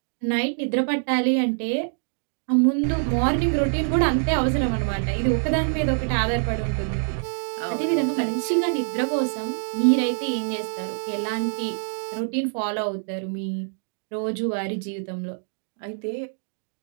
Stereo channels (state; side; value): silent; left; digital silence